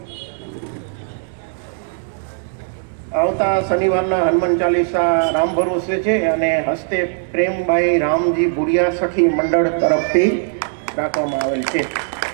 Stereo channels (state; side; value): silent; left; 67 dB below the other